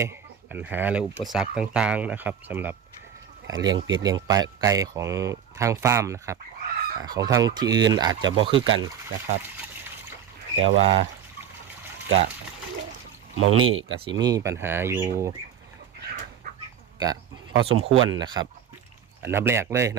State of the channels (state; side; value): quieter; left; 8.7 dB